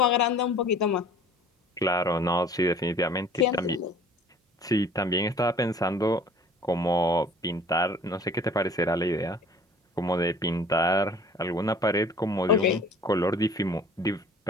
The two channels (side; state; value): both; normal; correlation 0.49